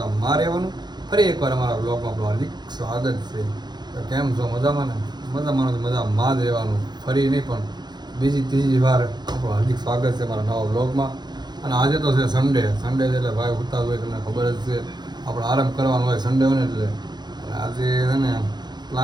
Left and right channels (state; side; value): late; left; 0.21 ms